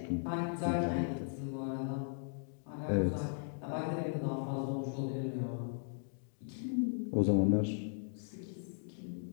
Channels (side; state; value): right; silent; digital silence